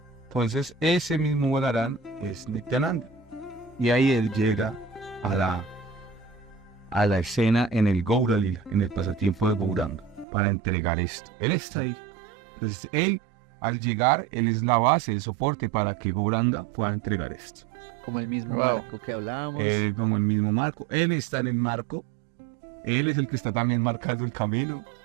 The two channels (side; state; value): left; drops out; at 10.2 s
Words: Entonces ese mismo Balaram es Nityananda. Y ahí él llega a la escena en el Gaura Lila, en el pasatiempo de Gauranga, para entregar esto. Él está ahí. Entonces él, al llegar, él es la base, el soporte para que Gauranga pueda entregar esto. Como el mismo Wow. barco que hablábamos. Él como el mismo marco. Él está en el marco. Él es el que está también marcando el camino.